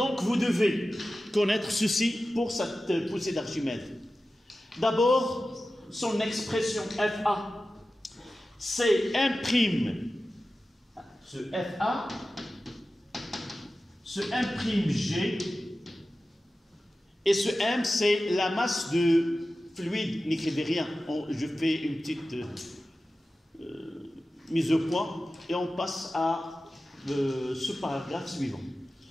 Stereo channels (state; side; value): normal; both; correlation 0.94